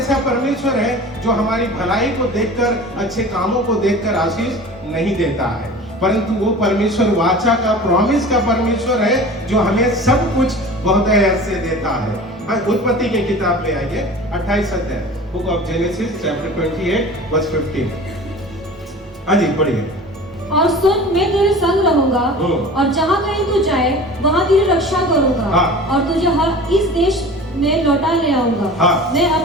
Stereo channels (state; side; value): normal; both; correlation 0.39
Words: परमेश्वर है जो हमारी भलाई को देखकर, अच्छे कामों को देखकर आशीष नहीं देता है, परंतु वो परमेश्वर वाचा का, प्रॉमिस का परमेश्वर है जो हमें सब कुछ बहुत से देता है। उत्पत्ति की किताब में आइए, 28 अध्याय, book of Genesis chapter 28 verse 15। हाँ जी पढ़िए। और सुन, मैं तेरे संग रहूंगा और जहाँ कहीं तू जाए वहाँ तेरी रक्षा करूंगा और तुझे हर इस देश में लौटा ले आऊंगा। मैं